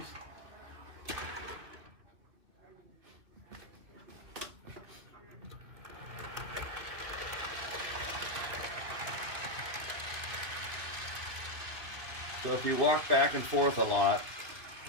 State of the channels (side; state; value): left; late; 2.8 ms